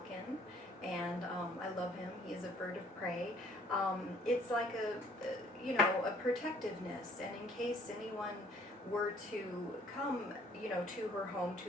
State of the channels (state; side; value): normal; both; correlation 0.59